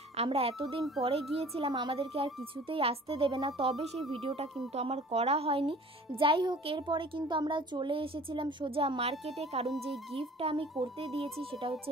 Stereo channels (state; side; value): normal; both; correlation 0.47